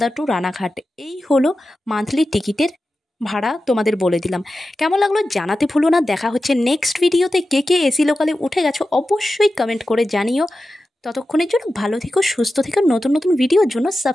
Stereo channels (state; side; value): normal; both; correlation 0.93